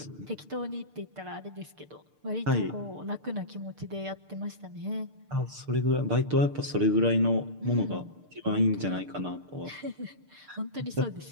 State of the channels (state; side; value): late; left; 6.7 ms